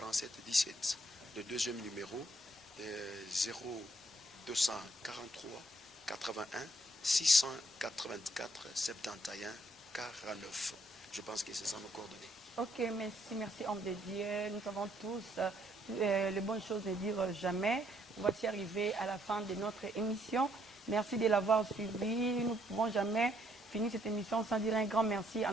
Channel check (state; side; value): normal; both; correlation 0.69